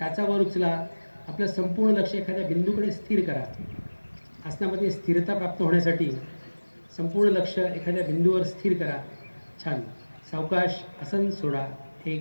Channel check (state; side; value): inverted; both; correlation -1.00